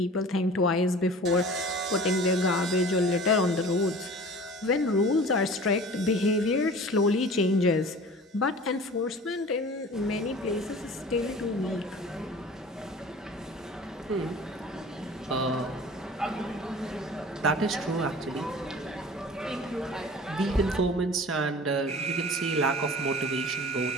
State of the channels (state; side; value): normal; both; correlation 0.41